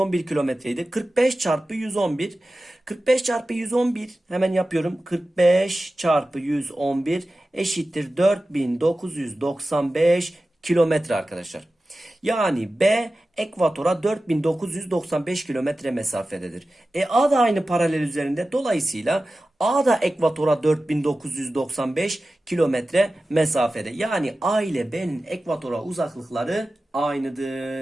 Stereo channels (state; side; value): normal; both; correlation 0.95